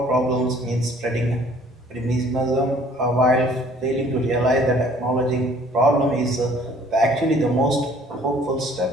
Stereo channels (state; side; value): normal; both; correlation 0.56